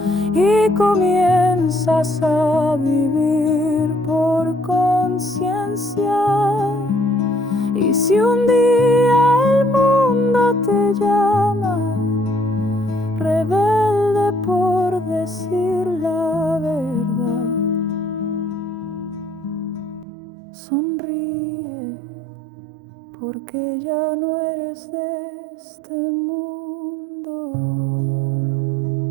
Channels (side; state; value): left; drops out; at 20.1 s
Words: y comienzas a vivir por conciencia. Y si un día el mundo te llama, rebelde por decir la verdad, sonríe, porque ya no eres de este mundo.